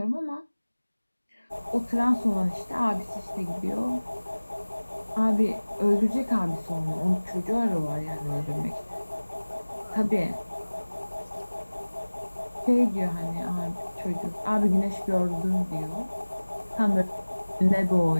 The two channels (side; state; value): both; inverted; correlation -1.00